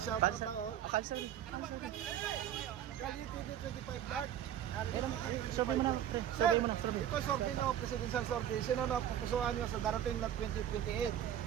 Shoutout lang oh. Kalsari. Kali TV 25 Dark. Survey mo na, pre. Survey mo na, ito survey no, presidential survey. Sino na pupusuan nyo sa darating na 2028?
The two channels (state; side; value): quieter; left; 10.7 dB